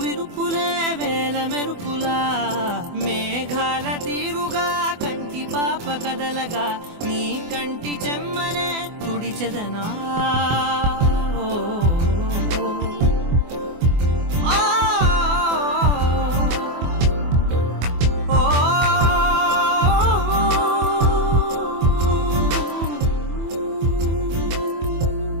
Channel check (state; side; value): late; left; 24 ms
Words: విరుపులే వేల మెరుపులా. మేఘాల తీరుగా కంటి పాప కదలగా నీ కంటి చెమ్మనే తుడిచెదనా.